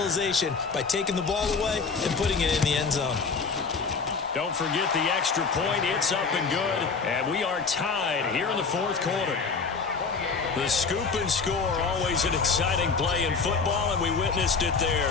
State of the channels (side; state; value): right; quieter; 4.9 dB